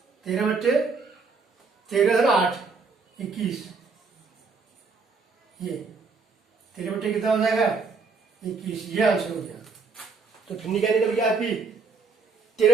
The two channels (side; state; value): left; quieter; 4.7 dB